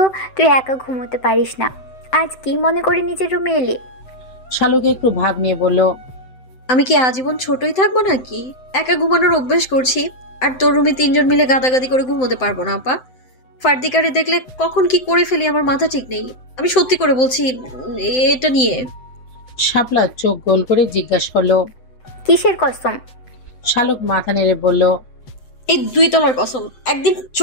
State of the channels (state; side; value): late; right; 7.8 ms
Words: তুই একা ঘুমোতে পারিস না, আজ কি মনে করে নিজের রুমে এলি? শালুক একটু ভাব নিয়ে বলল, আমি কি আজীবন ছোটই থাকবো নাকি? একা ঘুমানোর অভ্যাস করছি, আর তোর রুমে 3 জন মিলে গাদাগাদি করে ঘুমোতে পারবো না আপা। ফার্দিকারে দেখলে কখন কি করে ফেলি আমার মাথা ঠিক নেই। আমি সত্যি করে বলছি এটা নিয়ে। শাপলা চোখ গোল করে জিজ্ঞাসা করলো, কিসের কসম? শালুক মাথা নেড়ে বলল, এই 2 তলার কসম। একদিন